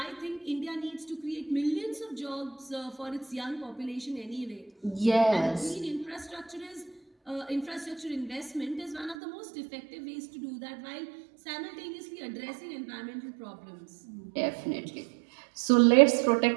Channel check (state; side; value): drops out; left; at 9.2 s